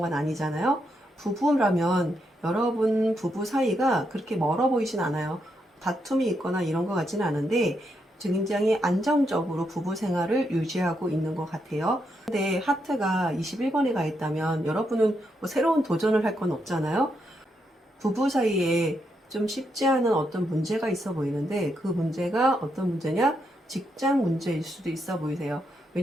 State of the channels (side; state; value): both; normal; correlation 0.80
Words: 아니잖아요. 부부라면 여러분 부부 사이가 그렇게 멀어 보이진 않아요. 다툼이 있거나 이런 것 같지는 않은데 굉장히 안정적으로 부부 생활을 유지하고 있는 것 같아요. 근데 하트가 21번에 가 있다면 여러분은 뭐 새로운 도전을 할 건 없잖아요. 부부 사이에 좀 쉽지 않은 어떤 문제가 있어 보이는데 그 문제가 어떤 문제냐? 직장 문제일 수도 있어 보이세요.